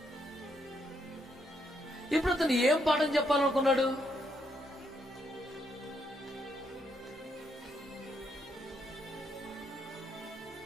ఇప్పుడు అతను ఏం పాఠం చెప్పాలనుకున్నాడు?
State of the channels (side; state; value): both; normal; correlation 0.76